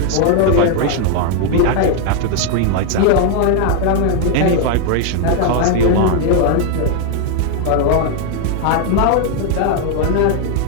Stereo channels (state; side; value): different; both; correlation 0.00